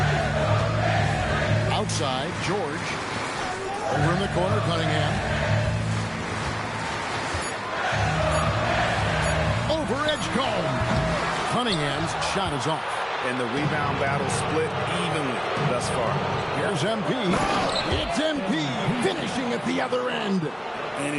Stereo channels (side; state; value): both; identical; correlation 1.00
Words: Outside, George. Over in the corner, Cunningham. Over Edgecombe. Cunningham's shot is off. And the rebound battle split evenly thus far. Here's MP. It's MP finishing at the other end.